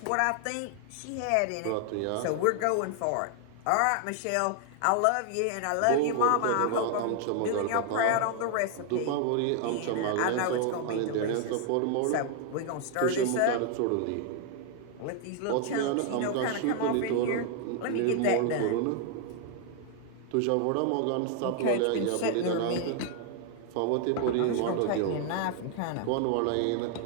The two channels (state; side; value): different; both; correlation 0.00